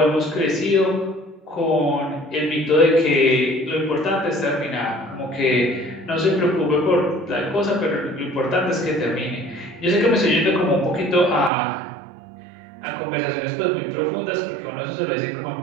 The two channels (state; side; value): drops out; left; at 11.5 s